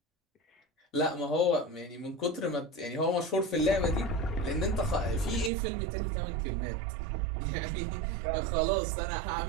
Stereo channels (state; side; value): drops out; left; at 5.5 s